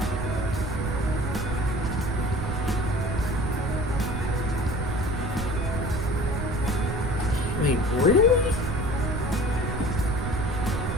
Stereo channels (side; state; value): right; noise; rumble, 3 dB below the sound